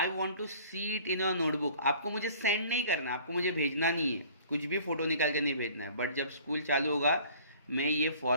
want to see it in a notebook. आपको मुझे सेंड नहीं करना, आपको मुझे भेजना नहीं है, कुछ भी फोटो निकाल के नहीं भेजना है. बट जब स्कूल चालू होगा मैं ये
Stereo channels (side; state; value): both; inverted; correlation -0.50